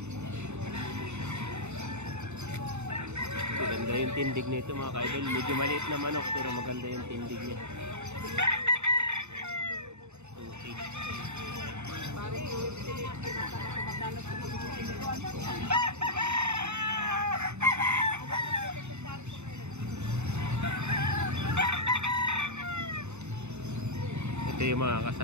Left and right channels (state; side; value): late; left; 0.82 ms